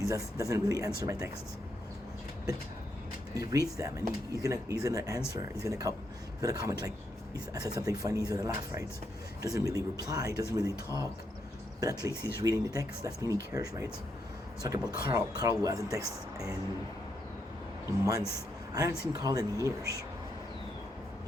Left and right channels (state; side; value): normal; both; correlation 0.79